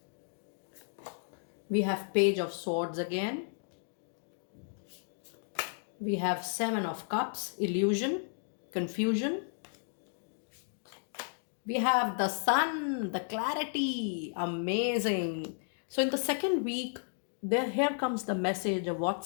We have Page of Swords again. We have 7 of Cups, illusion, confusion. We have the Sun, the clarity, amazing. So in the second week, here comes the message, a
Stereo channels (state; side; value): silent; right; digital silence